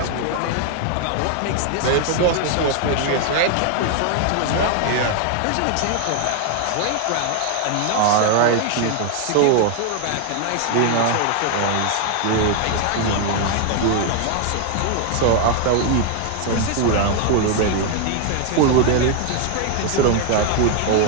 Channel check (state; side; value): different; both; correlation 0.00